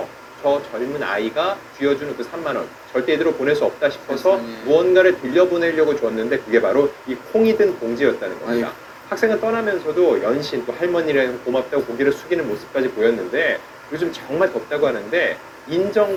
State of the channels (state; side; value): identical; both; correlation 1.00